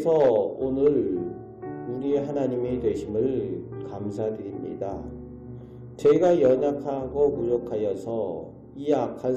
오늘 우리의 하나님이 되심을 감사드립니다. 저희가 연약하고 무력하여서 이 악한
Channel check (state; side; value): identical; both; correlation 1.00